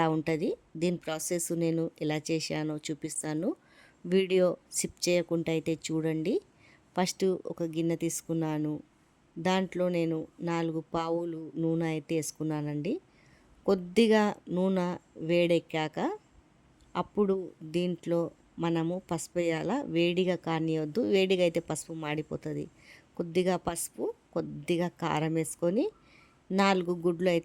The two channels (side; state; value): both; identical; correlation 1.00